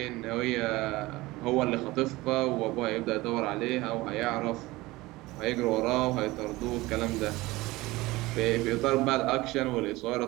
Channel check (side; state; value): left; quieter; 20.0 dB